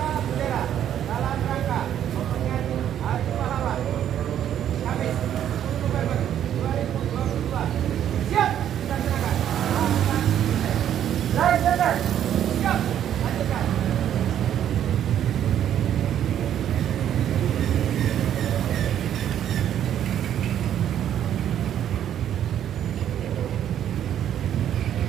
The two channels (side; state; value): left; quieter; 10.3 dB